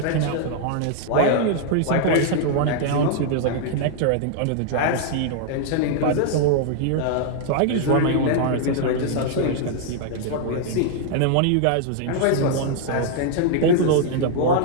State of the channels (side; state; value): both; different; correlation 0.00